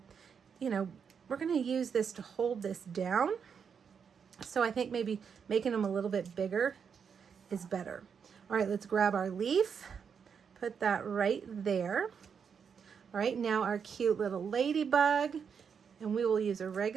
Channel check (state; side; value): quieter; left; 6.7 dB